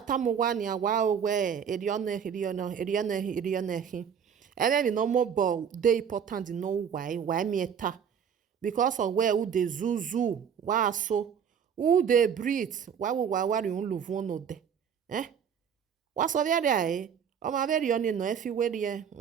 awa owe erione ebe no more but dey important know why me eta because of where who dey zuzu wa so who dey breathe why we wari un luvu no de wa so there o ma very oni no efi we there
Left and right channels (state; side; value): quieter; left; 7.6 dB